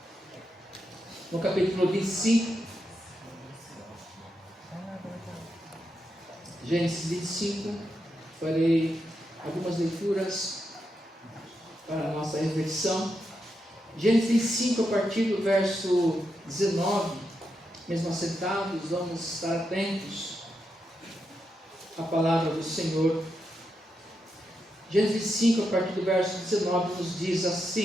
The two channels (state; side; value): normal; both; correlation 0.85